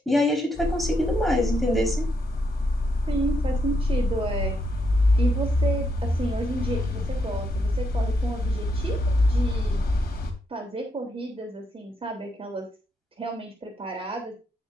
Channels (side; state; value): both; normal; correlation 0.78